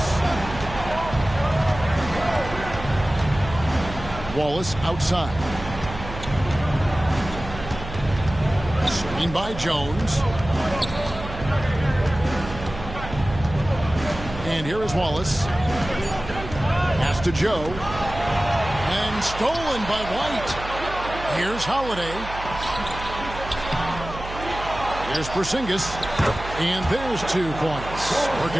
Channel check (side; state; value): right; noise; hum, 11 dB below the sound